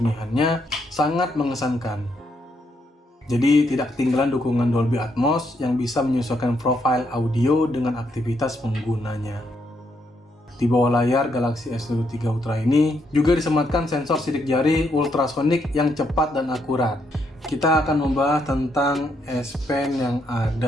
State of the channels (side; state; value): both; normal; correlation 0.76